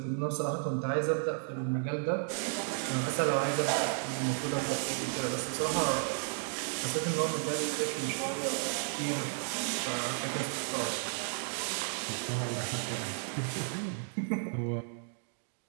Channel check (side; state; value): left; silent; 56 dB below the other